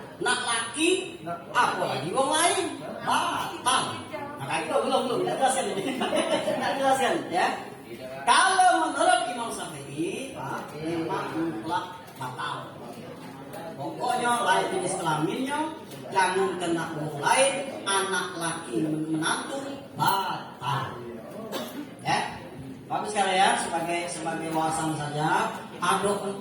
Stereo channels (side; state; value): both; identical; correlation 1.00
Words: Nak laki apa lagi wong lain batal. Nah itu belum tidak jelaskan ini. Tidak jelaskan ya. Kalau menurut Imam Syafi'i, Pak, memang mutlak batal. Pokoknya lain jenis kelaminnya, jangan kena wong lain, anak laki menantu batal. Ya. Bapak sekalian, sebagai wawasan saja, ada